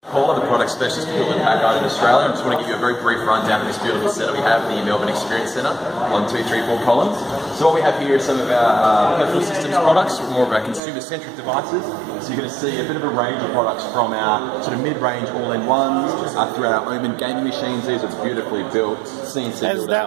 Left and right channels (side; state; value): left; drops out; at 10.8 s